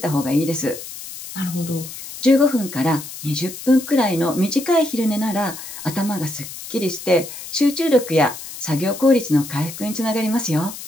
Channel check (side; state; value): left; noise; hiss, 12 dB below the sound